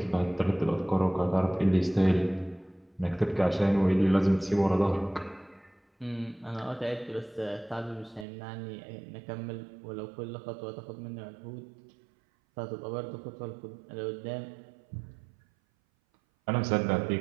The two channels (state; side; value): drops out; left; at 8.2 s